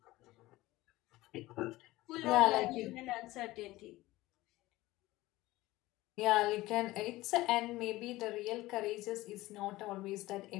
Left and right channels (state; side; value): quieter; right; 18.2 dB